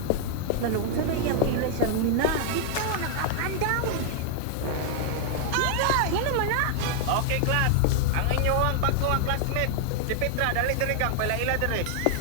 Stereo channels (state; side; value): different; both; correlation 0.00